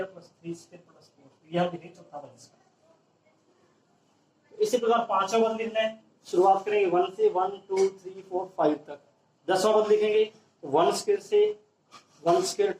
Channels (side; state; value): both; identical; correlation 1.00